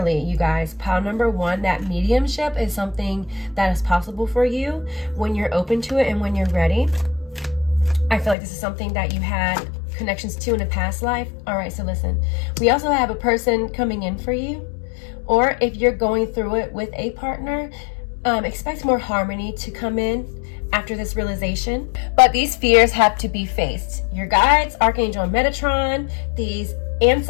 you guys, pile number 1, that mediumship is something that is possible for you when you're open to it and when you're ready. I feel like this is something that you had connections to in a past life. All right, so listen, we also have a person coming in for you, or if you're going through it with a partner, expect more harmony to come in after this realization. But these fears have to be faced. Your guides, Archangel Metatron, these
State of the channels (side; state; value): right; drops out; at 8.3 s